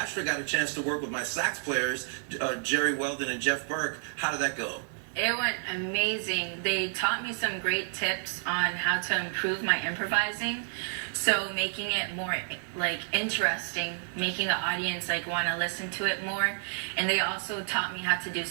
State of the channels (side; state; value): left; silent; digital silence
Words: got a chance to work with my sax players, Jerry Weldon and Jeff Burke. How did that go? It went amazing. They taught me some great tips on how to improve my improvising. So making it more like interesting, making the audience like want to listen to it more. And they also taught me how to do